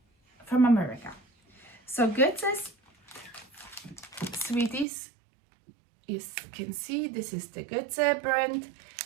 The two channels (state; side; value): drops out; left; at 4.9 s